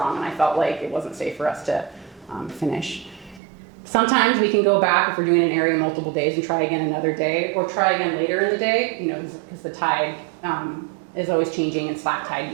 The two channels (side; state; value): left; drops out; at 3.4 s